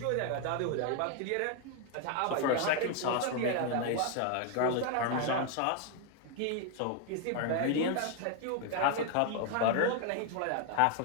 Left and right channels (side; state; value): both; different; correlation 0.01